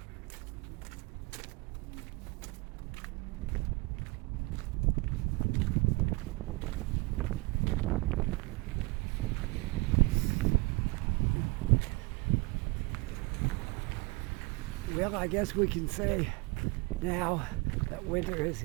Well, I guess we can say now that winter is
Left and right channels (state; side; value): quieter; left; 24.8 dB